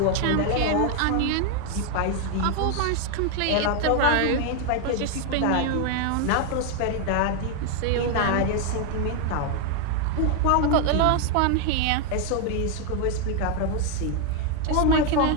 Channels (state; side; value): different; both; correlation 0.01